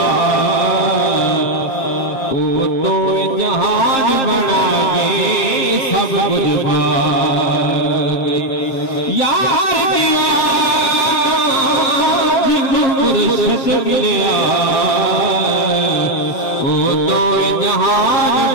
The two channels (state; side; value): late; right; 7.5 ms